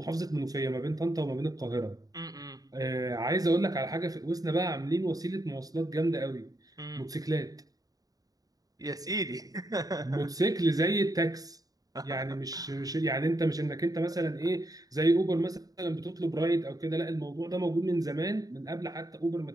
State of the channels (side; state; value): left; late; 0.18 ms